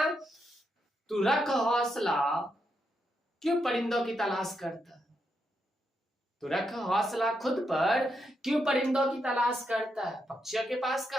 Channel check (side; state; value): both; normal; correlation 0.82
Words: तू रख हौसला, क्यों परिंदों की तलाश करता है। तो रख हौसला खुद पर, क्यों परिंदों की तलाश करता है। पक्षियों के पास